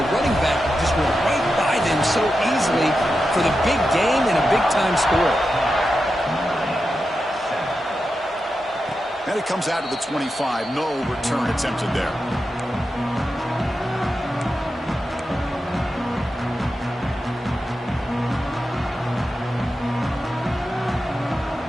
running back just went right by them so easily for the big game and a big-time score. And it comes out of the 25. No return attempted there.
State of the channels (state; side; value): normal; both; correlation 0.89